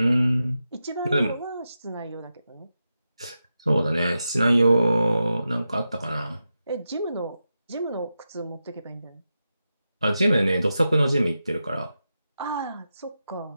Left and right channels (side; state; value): both; inverted; correlation -0.90